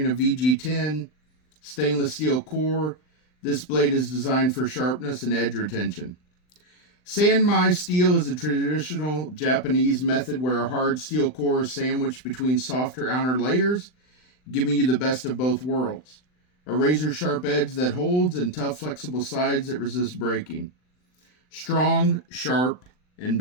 a VG10 stainless steel core, this blade is designed for sharpness and edge retention. San Mai steel is a traditional Japanese method where a hard steel core is sandwiched between softer outer layers, giving you the best of both worlds. A razor-sharp edge that holds and tough, flexible sides that resist breaking. Strong, sharp, and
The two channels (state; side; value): late; right; 39 ms